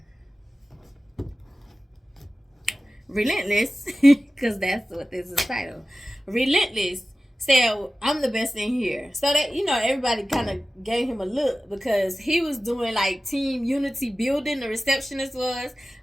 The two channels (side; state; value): both; normal; correlation 0.96